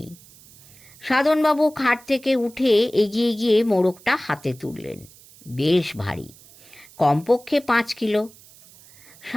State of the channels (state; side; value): noise; right; hiss, 24 dB below the sound